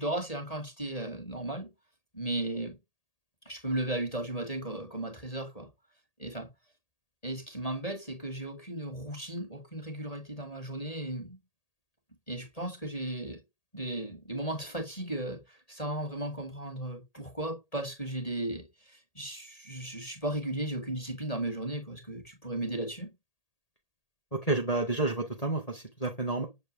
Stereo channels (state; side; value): late; right; 1.8 ms